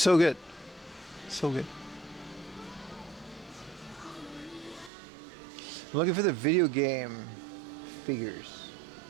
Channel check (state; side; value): drops out; left; at 4.9 s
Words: good. So good. I'm looking for the video game figures.